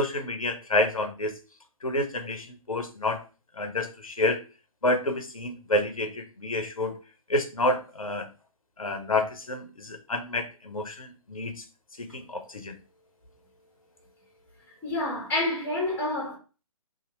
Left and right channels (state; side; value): normal; both; correlation 0.07